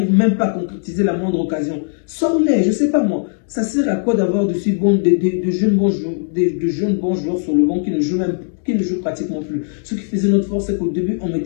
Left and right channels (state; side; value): silent; right; digital silence